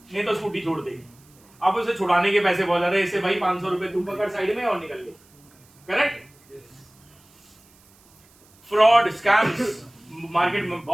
नहीं तो स्कूटी छोड़ दे। अब उसे छुड़ाने के पैसे बहुत ज्यादा है, इससे भाई 500 रुपए तू पकड़ साइड में और निकल ले। करेक्ट? फ्रॉड, स्कैम्स, मार्केट में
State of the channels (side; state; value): right; noise; hiss, 30 dB below the sound